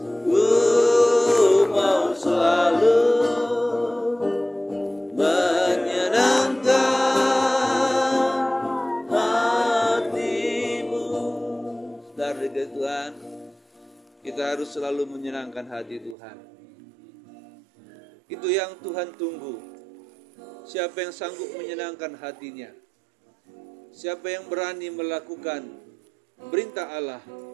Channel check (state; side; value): drops out; left; at 16.2 s